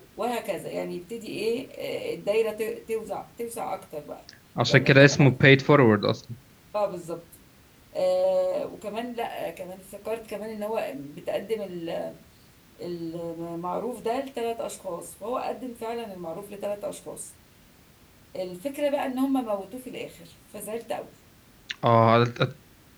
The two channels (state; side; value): identical; both; correlation 1.00